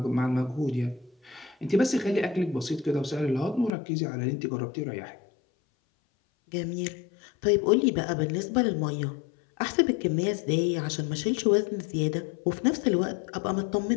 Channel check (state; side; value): drops out; right; at 3.7 s